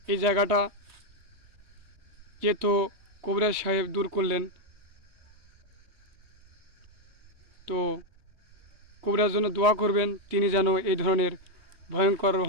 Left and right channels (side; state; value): left; late; 3.2 ms